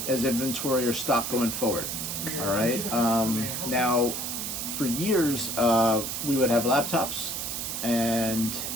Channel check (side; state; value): right; noise; hiss, 4 dB below the sound